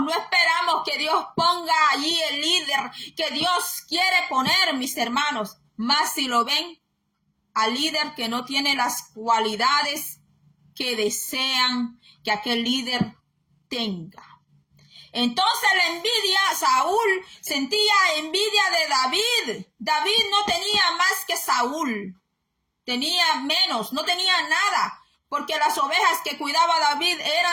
no esperamos que Dios ponga allí el líder que Dios quiere poner, mis hermanos. Más si lo ven al líder que no tiene las cualidades que desean que aquel líder tenga. Entonces la envidia, Saúl sentía envidia de David. David no tenía más que Saúl. Tenía menos, no tenía nada. Porque las ovejas que cuidaba David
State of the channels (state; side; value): identical; both; correlation 1.00